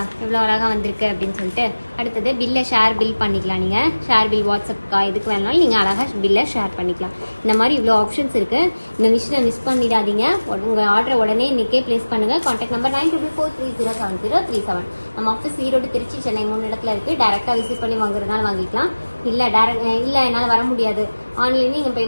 எவ்வளவு அழகா வந்திருக்கு அப்படின்னு சொல்லிட்டு. அடுத்தது பில்ல ஷேர் பில் பண்ணிக்கலாம். நீங்க ஷேர் பில் வாட்ஸ்அப்கா இதுக்கு வேணாலும் நீங்க அழகா பில்ல ஷேர் பண்ணிக்கலாம். இந்த மாதிரி இவ்வளவு ஆப்ஷன்ஸ் இருக்கு. இந்த விஷயத்தை மிஸ் பண்ணிடாதீங்க. உங்க ஆர்டர் உடனே இன்னைக்கே பிளேஸ் பண்ணுங்க. Contact number 9243307037. நம்ம ஆஃபீஸ் ஈரோடு, திருச்சி, சென்னை 3 இடத்துல இருக்கு. டைரக்டா விசிட் பண்ணி வாங்குறதுனால வாங்கிக்கலாம். இல்ல என்னால வர முடியாது, ஆன்லைன்ல நீங்க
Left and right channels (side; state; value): both; inverted; correlation -1.00